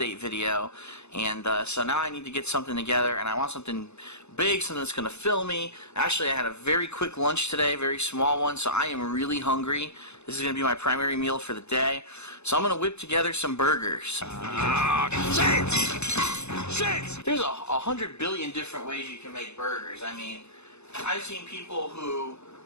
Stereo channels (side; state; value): right; late; 0.81 ms